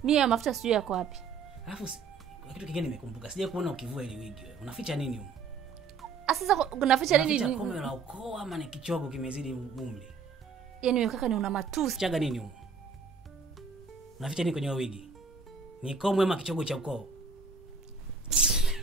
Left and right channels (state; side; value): quieter; left; 5.2 dB